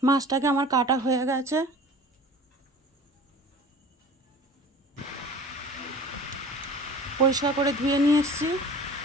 মাছটাকে আমার কাটা হয়ে গেছে। পরিষ্কার করে ধুয়ে নিয়ে এসেছি।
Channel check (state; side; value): normal; both; correlation 0.42